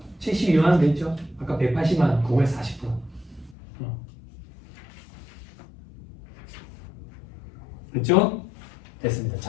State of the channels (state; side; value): drops out; right; at 3.6 s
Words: 72만 원 돼 있죠. 아까 180만 원 그거에 40%. 됐죠? 됐습니다.